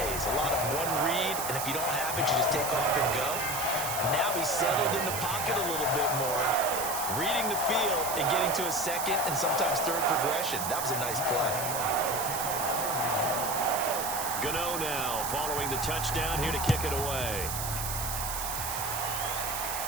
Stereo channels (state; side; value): noise; right; hiss, 4 dB below the sound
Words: A lot of one read, and if you don't have it, you just take off and go. Now he's settled in the pocket a little bit more, reading the field and getting to a 2nd and sometimes 3rd progression. That was a nice play. Gano now following the touchdown here to kick it away.